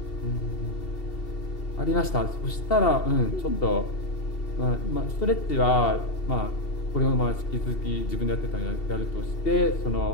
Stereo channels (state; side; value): late; right; 2.7 ms